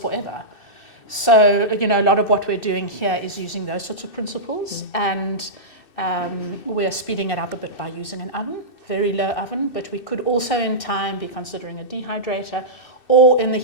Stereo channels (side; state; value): right; late; 2.6 ms